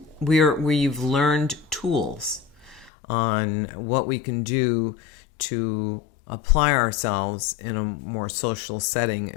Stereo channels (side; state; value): right; drops out; at 2.9 s